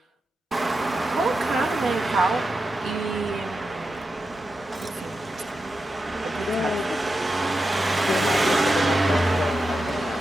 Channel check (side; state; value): both; normal; correlation 0.89